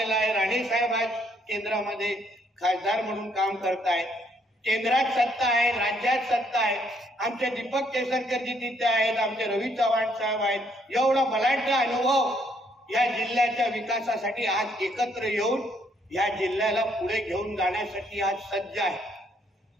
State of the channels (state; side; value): normal; both; correlation 0.69